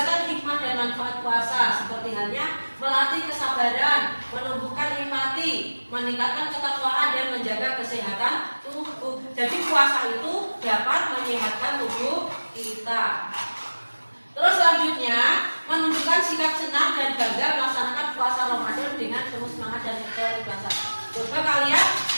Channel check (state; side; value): inverted; both; correlation -1.00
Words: hikmah dan manfaat puasa, seperti halnya melatih kesabaran, menumbuhkan empati, meningkatkan ketakwaan dan menjaga kesehatan tubuh. Jadi puasa itu dapat menyehatkan tubuh kita. Terus selanjutnya, menunjukkan sikap senang dan bangga melaksanakan puasa Ramadan dengan penuh semangat dan keikhlasan. Coba kalian